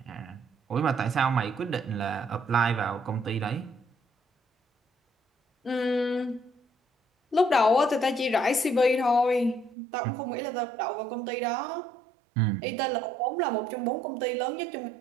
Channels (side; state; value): left; drops out; at 9.8 s